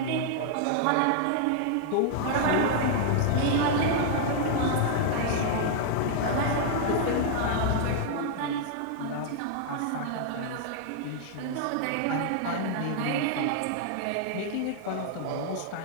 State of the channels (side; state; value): both; different; correlation -0.01